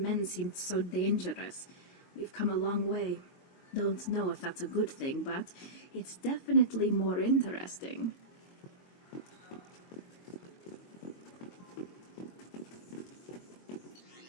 seemed so dangerous. We've come a long way. Don't know if that's a good thing, but it's definitely more interesting.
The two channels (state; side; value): late; right; 22 ms